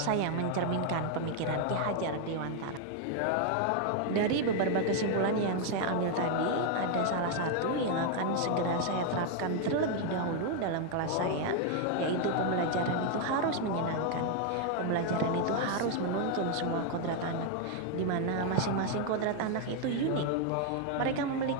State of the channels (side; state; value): both; different; correlation 0.00